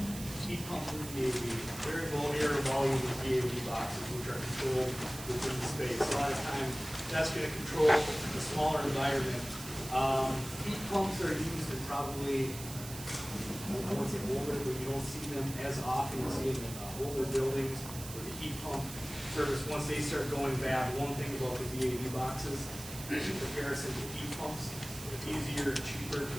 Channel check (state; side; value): noise; right; hiss, 11 dB below the sound